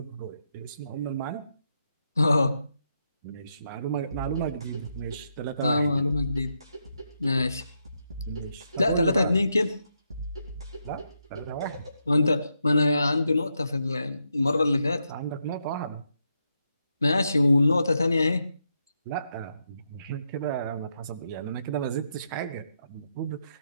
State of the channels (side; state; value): both; inverted; correlation -0.82